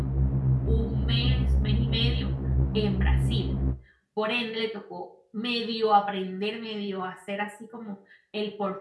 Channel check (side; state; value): both; identical; correlation 1.00